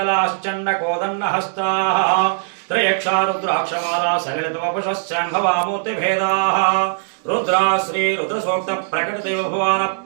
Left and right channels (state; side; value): silent; left; digital silence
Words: त्रयक्षा रुद्राक्षमाला सलिलतवपुषश्चाम्भवामूर्तिभेदाः रुद्रा श्री रुद्रसूक्त प्रकटदेव भवान